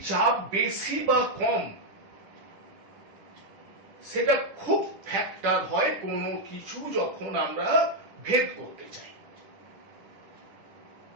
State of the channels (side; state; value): left; late; 10 ms